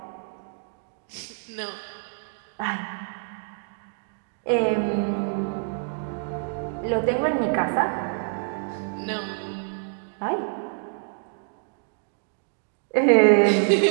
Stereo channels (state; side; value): silent; left; digital silence